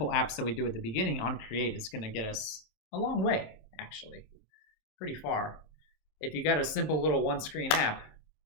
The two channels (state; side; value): late; right; 26 ms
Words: apps that we do at the beginning, onCreate is going to get us a long way, actually. Pretty far. If you got a simple little one-screen app,